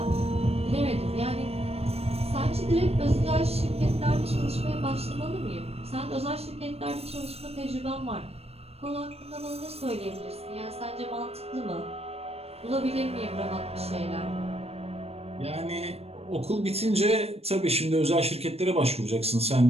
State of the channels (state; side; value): late; left; 0.29 ms